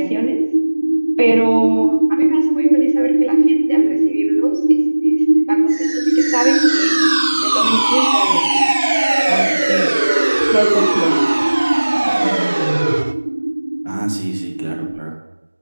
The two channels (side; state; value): both; inverted; correlation -1.00